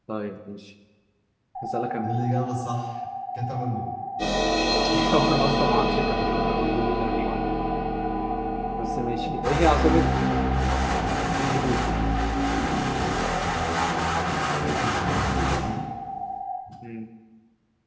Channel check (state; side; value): identical; both; correlation 1.00